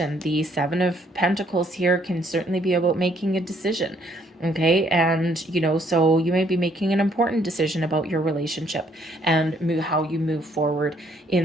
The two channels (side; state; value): both; normal; correlation 0.67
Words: The 7 of Pentacles here can certainly be about making a decision. Okay, and so you may be making an important decision about your relationship and how you move forward